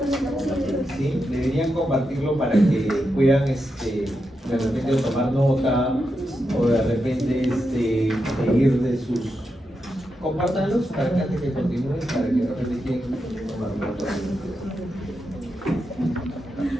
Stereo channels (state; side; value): normal; both; correlation 0.86